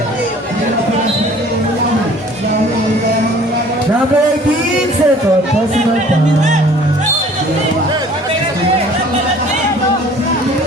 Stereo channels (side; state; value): both; normal; correlation 0.51